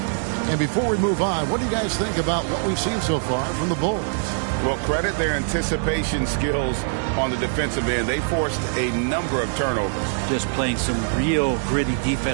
And before we move on, what do you guys think about what we've seen so far from the Bulls? Well, credit their anticipation skills on the defensive end. They forced a number of turnovers. Just playing some real gritty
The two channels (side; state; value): left; silent; digital silence